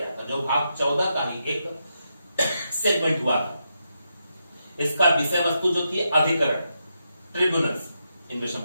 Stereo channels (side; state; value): both; inverted; correlation -0.84